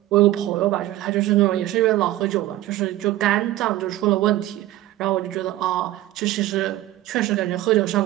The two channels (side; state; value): left; quieter; 15.6 dB